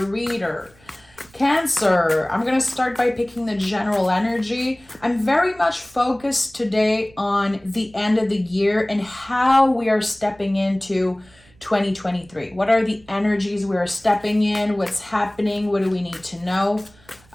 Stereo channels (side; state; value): right; noise; rumble, 28 dB below the sound